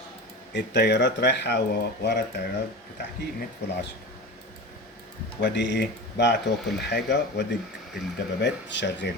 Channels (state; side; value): normal; both; correlation 0.30